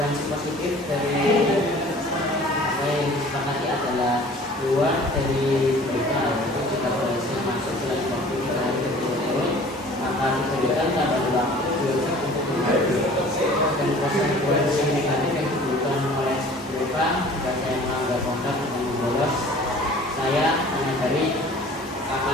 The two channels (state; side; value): normal; both; correlation 0.47